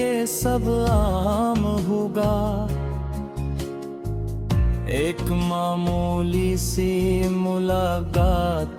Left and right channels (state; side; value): identical; both; correlation 1.00